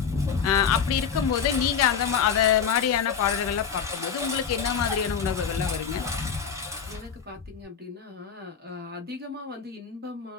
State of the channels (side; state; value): right; quieter; 7.0 dB